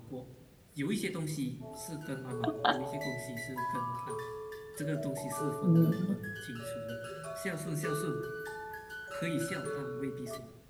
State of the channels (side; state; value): both; identical; correlation 1.00